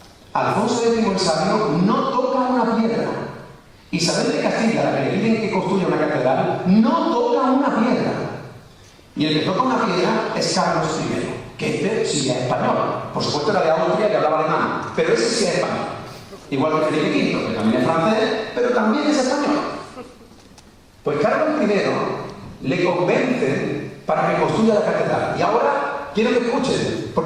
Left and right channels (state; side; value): identical; both; correlation 1.00